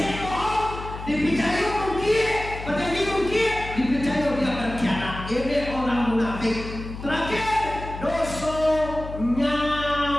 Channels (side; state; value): left; noise; hum, 10 dB below the sound